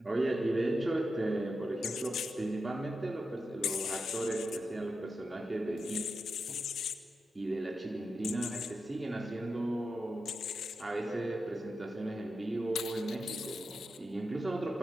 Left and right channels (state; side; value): normal; both; correlation 0.89